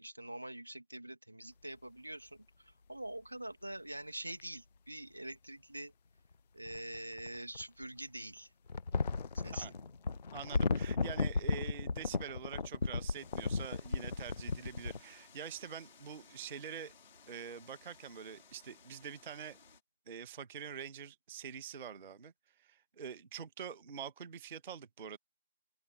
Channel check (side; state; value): both; inverted; correlation -0.75